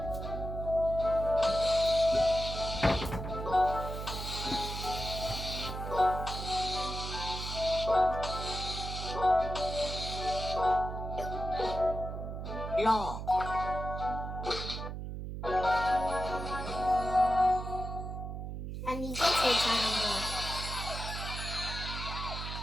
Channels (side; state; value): right; noise; hum, 6 dB below the sound